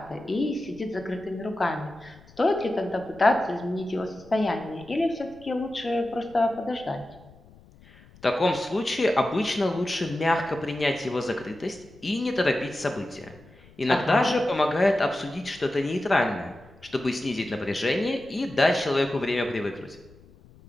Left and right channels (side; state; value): left; noise; rumble, 25 dB below the sound